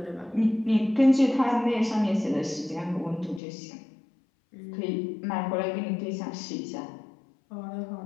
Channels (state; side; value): drops out; right; at 3.4 s